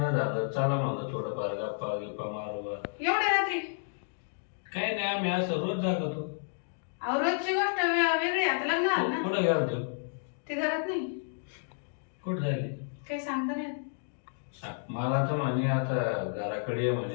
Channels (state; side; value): silent; right; digital silence